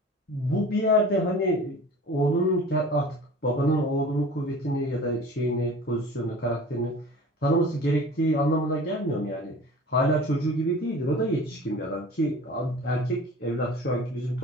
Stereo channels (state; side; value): normal; both; correlation 0.41